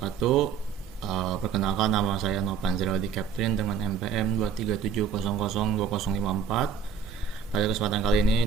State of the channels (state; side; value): quieter; left; 6.7 dB